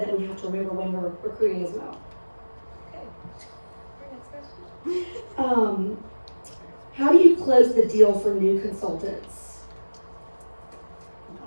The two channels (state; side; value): inverted; both; correlation -1.00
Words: we have to remember when we're recruiting as well. How do you close the deal for new consultants?